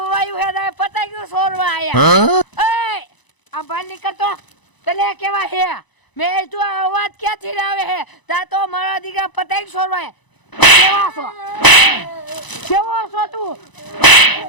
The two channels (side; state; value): right; late; 1.0 ms